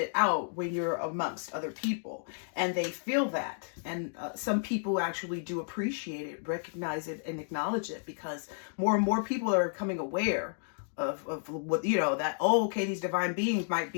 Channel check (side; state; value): right; silent; digital silence